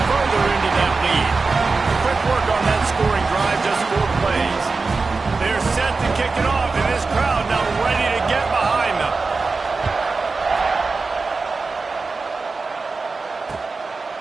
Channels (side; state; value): left; quieter; 4.1 dB